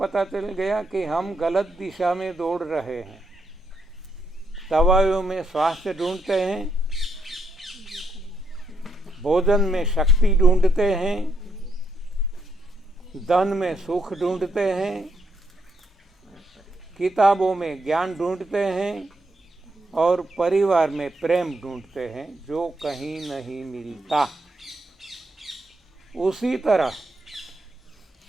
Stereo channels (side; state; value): both; normal; correlation 0.77